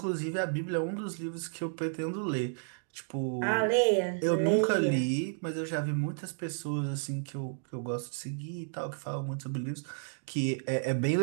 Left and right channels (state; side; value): silent; left; digital silence